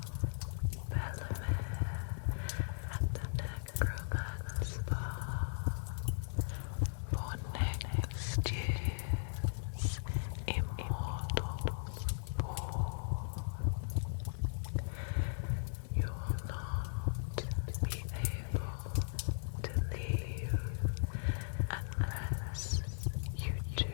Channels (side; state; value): right; silent; digital silence